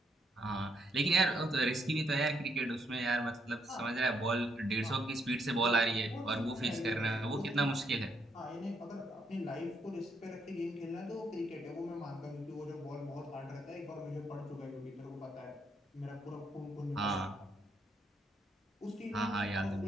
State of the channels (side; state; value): both; normal; correlation 0.75